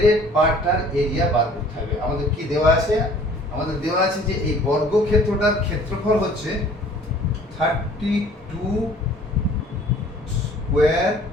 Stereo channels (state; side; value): normal; both; correlation 0.52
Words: পার্টটার এরিয়া বার করতে হবে। আমাদের কি দেওয়া আছে? আমাদের দেওয়া আছে যে এই বর্গক্ষেত্রটার ক্ষেত্রফল হচ্ছে 32 স্কয়ার